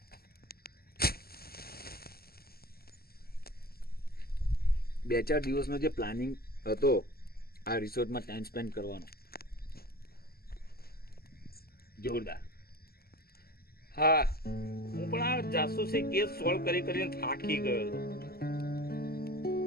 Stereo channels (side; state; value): right; late; 0.45 ms